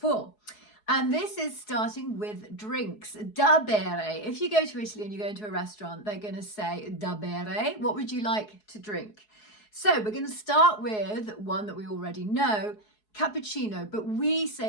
And this is starting with drinks, da bere. If you go to Italy and you go into a restaurant, they're going to say da bere. What would you like to drink? So we're going to start with one that we already know, cappuccino, but we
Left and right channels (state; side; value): late; right; 4.7 ms